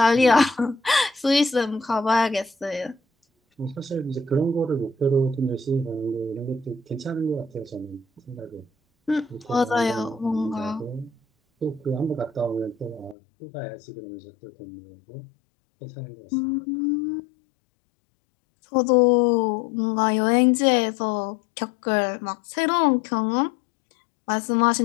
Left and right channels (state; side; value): drops out; right; at 13.2 s